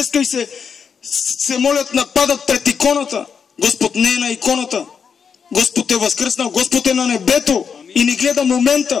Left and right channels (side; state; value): right; quieter; 6.5 dB